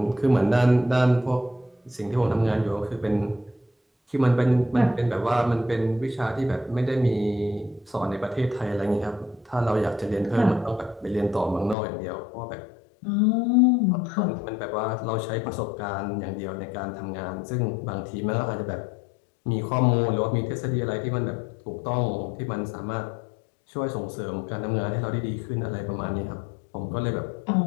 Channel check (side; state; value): right; drops out; at 11.8 s